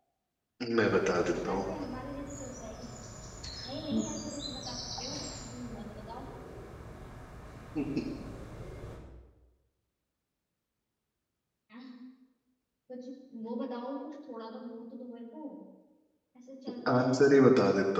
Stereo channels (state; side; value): identical; both; correlation 1.00